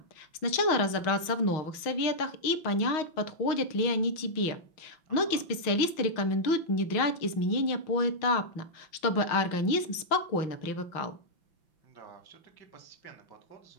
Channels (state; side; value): late; right; 5.9 ms